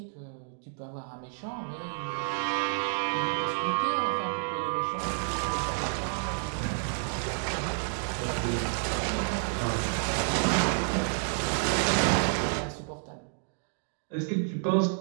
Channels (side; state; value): left; silent; 58 dB below the other